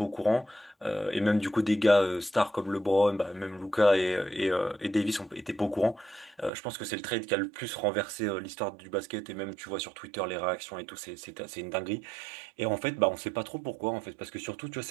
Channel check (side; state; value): left; drops out; at 6.5 s